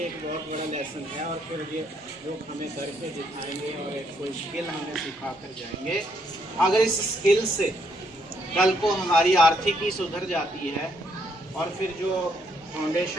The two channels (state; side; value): normal; both; correlation 0.72